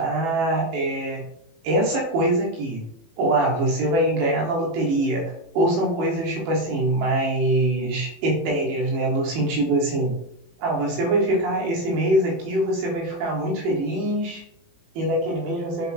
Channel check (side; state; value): left; late; 18 ms